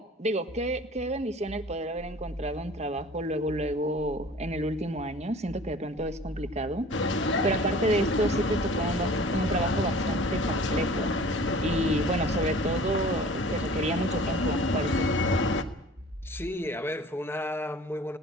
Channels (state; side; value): normal; both; correlation 0.46